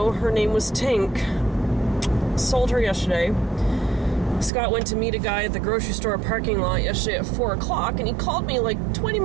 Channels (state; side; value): drops out; left; at 4.5 s